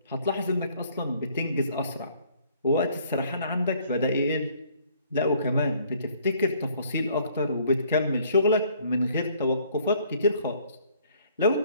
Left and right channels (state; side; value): inverted; both; correlation -0.61